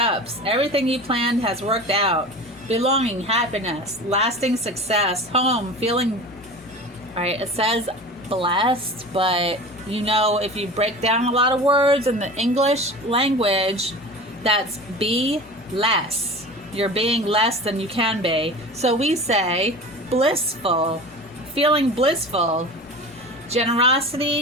Everything you planned has worked out. Belonging, happiness, lasting success, home, feeling... Alright, it says blessed, but you know, if you break down a lot of words in the English language, that's be less. You're being less than you can be. So we say blissful, feeling blissful.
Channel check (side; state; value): both; normal; correlation 0.35